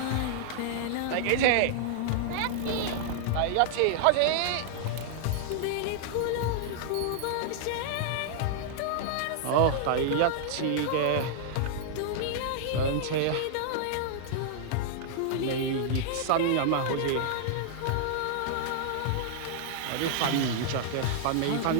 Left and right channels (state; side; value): different; both; correlation -0.01